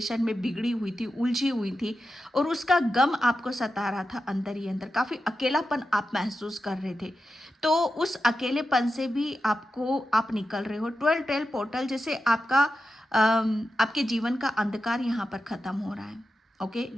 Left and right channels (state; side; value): normal; both; correlation 0.91